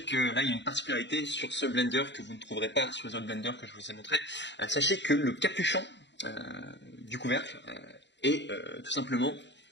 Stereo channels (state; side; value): late; right; 0.52 ms